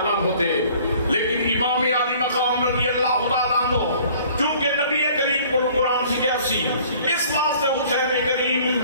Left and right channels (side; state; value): both; inverted; correlation -0.53